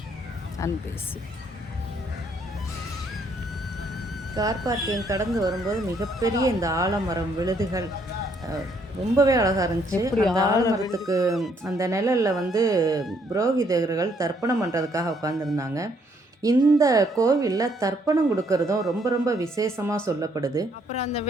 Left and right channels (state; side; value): normal; both; correlation 0.69